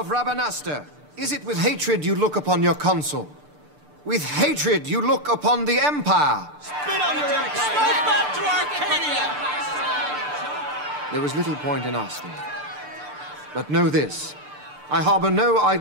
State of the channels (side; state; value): left; late; 6.8 ms